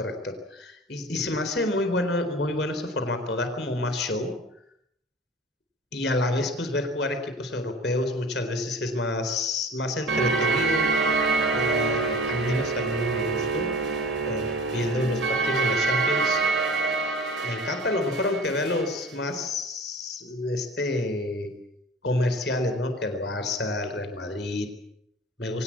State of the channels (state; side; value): normal; both; correlation 0.41